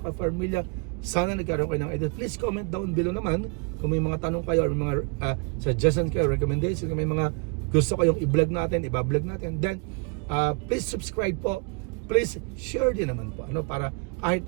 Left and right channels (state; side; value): quieter; left; 32.8 dB